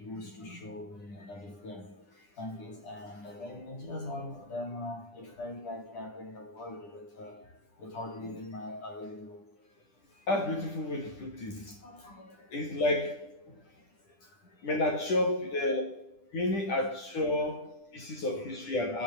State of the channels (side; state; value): right; late; 10 ms